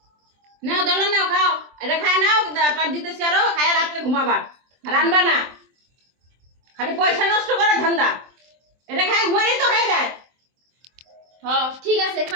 নাও দলা নাও খাও এটা খায় নাও পার দিতেছি আরো খায় রাত্রে ঘুমাবা রান্না না খালি পয়সা নষ্ট করে ধান্দা এটা খায় ঘুমাই তো হয়ে যায়। হ্যাঁ ঠিক আছে,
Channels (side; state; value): left; late; 23 ms